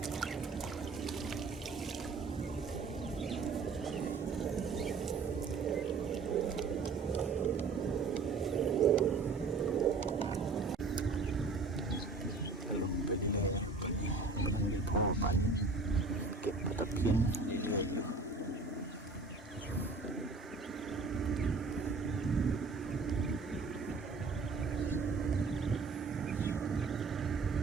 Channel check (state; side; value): quieter; left; 4.2 dB